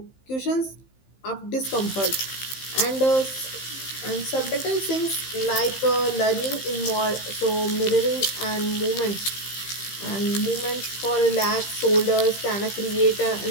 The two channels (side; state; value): right; late; 15 ms